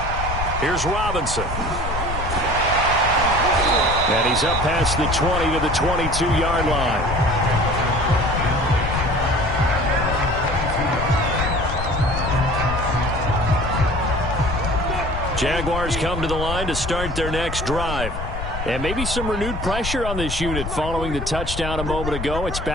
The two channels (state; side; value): noise; left; rumble, 6 dB below the sound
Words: Here's Robinson. And he's up past the 20 to the 22-yard line. Jaguars come to the line to start their next drive. And maybe some renewed pressure on this unit following the touchdown a moment ago. It's